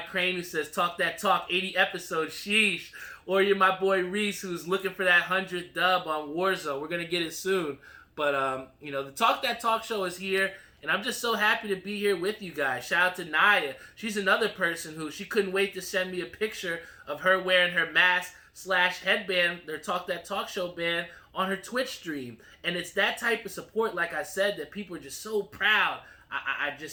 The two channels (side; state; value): both; identical; correlation 1.00